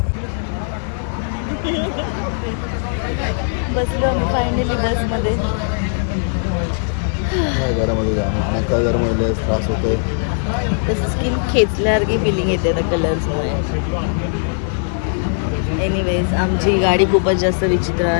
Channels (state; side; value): silent; right; digital silence